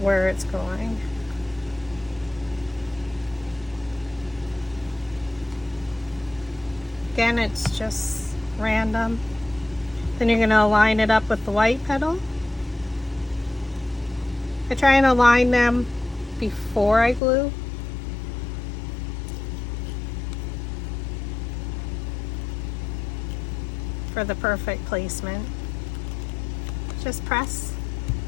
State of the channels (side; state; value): right; drops out; at 17.2 s